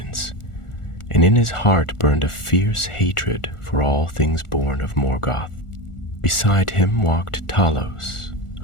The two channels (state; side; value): late; right; 1.4 ms